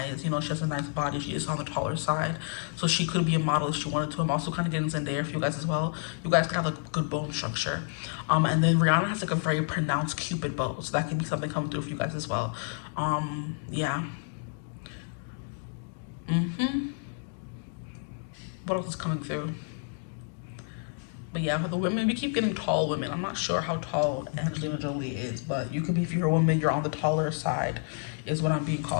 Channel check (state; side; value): silent; right; 58 dB below the other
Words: You know, she has a nice body. She is on the taller side, so she could be a model if she wanted to. I'm also kind of getting Zendaya for you guys as well. You guys could have like good bone structure. And then Rihanna has like a very pronounced Cupid bow, so that could be something coming through for you guys as well. Yeah. What else is coming through? But yeah, for the women, we keep getting tall women. I'm not sure how tall Angelina Jolie is, but you could be, if you're a woman, you're on the taller side, is what I'm being